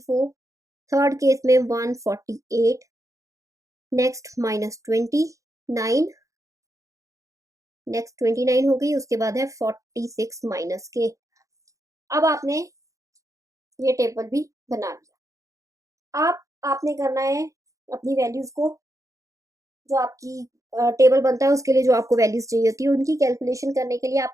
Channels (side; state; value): left; late; 0.16 ms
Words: थर्ड केस में 148, नेक्स्ट -29, नेक्स्ट 29 हो गई, उसके बाद है 46 माइनस के। अब आपने ये टेबल भी बना लिया। आपने करना है अपनी वैल्यूज को, जो आपकी टेबल बनता है उसके लिए जो आपको वैल्यूज चाहिए होती है उनकी कैलकुलेशन करने के लिए